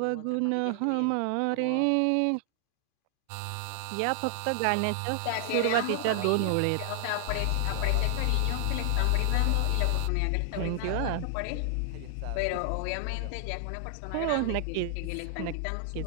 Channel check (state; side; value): different; both; correlation 0.00